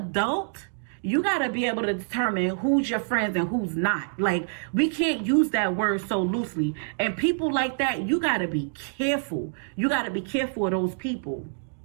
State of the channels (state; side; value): silent; left; digital silence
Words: you got to be able to determine who's your friends and who's not. Like, we can't use that word so loosely. And people like that, you got to be careful. You got to be careful of those people.